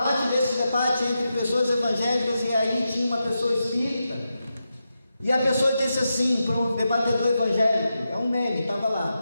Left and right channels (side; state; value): both; inverted; correlation -0.88